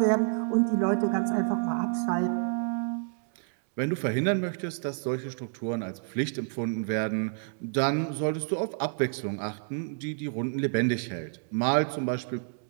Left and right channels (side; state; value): left; silent; digital silence